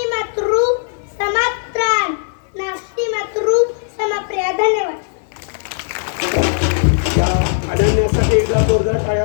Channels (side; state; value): right; silent; 64 dB below the other